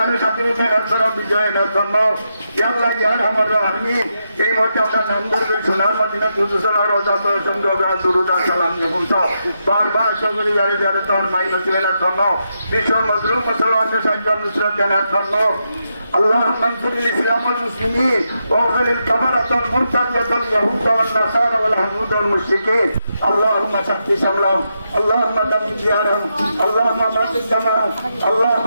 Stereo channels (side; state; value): both; inverted; correlation -0.84